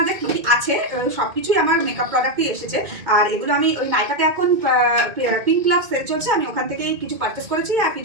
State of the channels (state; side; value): late; left; 2.2 ms